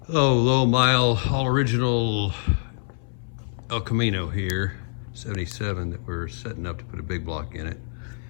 low mile, all original El Camino here, 77, that we're setting up to put a big block in it,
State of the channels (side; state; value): right; silent; 62 dB below the other